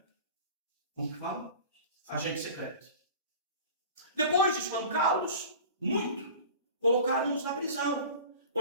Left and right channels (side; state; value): both; inverted; correlation -0.39